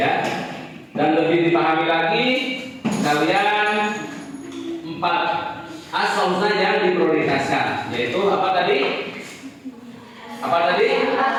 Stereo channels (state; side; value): identical; both; correlation 1.00